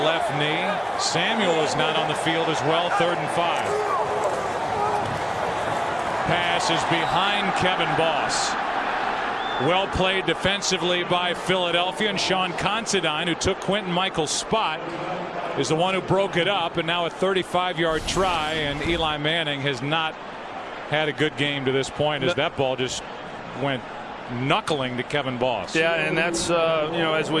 knee. Samuel is not on the field as well. 3rd and 5. Pass is behind Kevin Boss. Well played defensively by Philadelphia, and Sean Considine, who took Quentin Michael's spot, is the one who broke it up, and now a 35-yard try, and Eli Manning has not had a good game to this point as that ball just went knuckling to Kevin Boss. Yeah, and that's as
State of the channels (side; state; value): both; identical; correlation 1.00